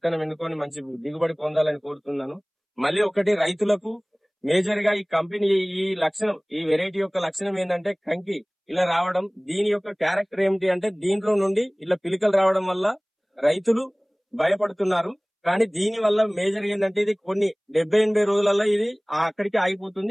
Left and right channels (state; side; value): identical; both; correlation 1.00